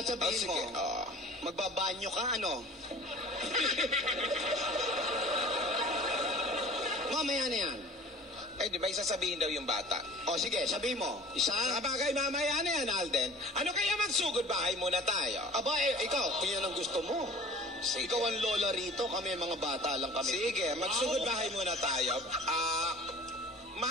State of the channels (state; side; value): normal; both; correlation 0.44